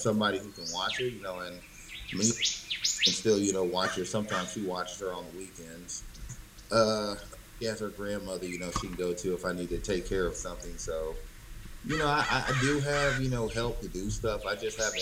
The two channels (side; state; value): both; identical; correlation 1.00